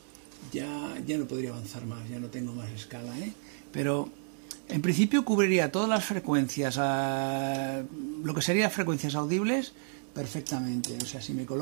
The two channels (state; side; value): silent; left; digital silence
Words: ya no podría avanzar más, ya no tengo más escala, pero en principio cubriría todas las frecuencias, lo que serían frecuencias audibles perfectamente. O sea, si me